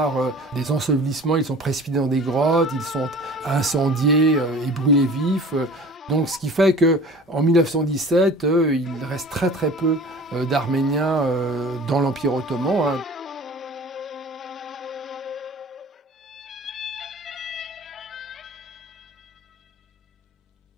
des ensevelissements. Ils sont précipités dans des grottes, ils sont incendiés et brûlés vifs. Donc, ce qui fait qu'en 1917, il reste très peu d'Arméniens dans l'Empire ottoman.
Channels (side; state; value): both; normal; correlation 0.42